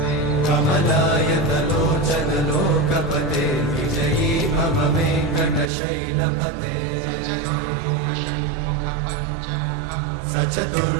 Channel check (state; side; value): drops out; left; at 5.7 s